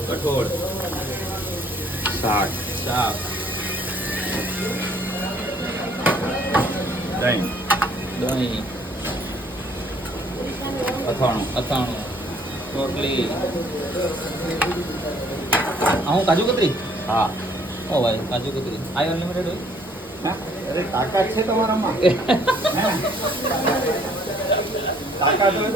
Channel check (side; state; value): both; normal; correlation 0.61